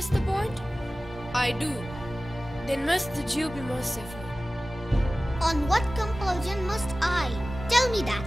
the bond? I do. Then must the Jew be merciful. On what compulsion must I? Tell me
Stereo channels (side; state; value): both; normal; correlation 0.97